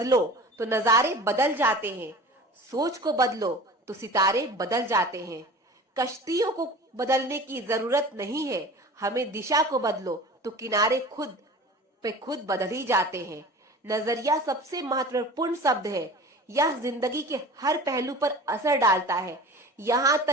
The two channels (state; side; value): normal; both; correlation 0.39